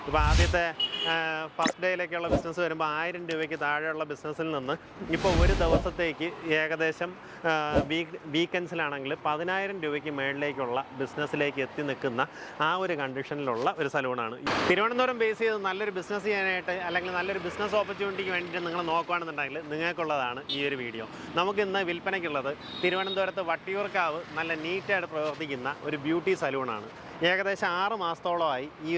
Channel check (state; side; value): identical; both; correlation 1.00